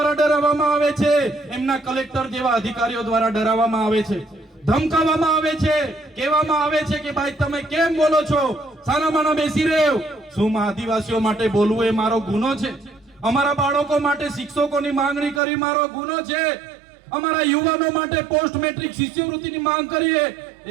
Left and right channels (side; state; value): left; drops out; at 15.4 s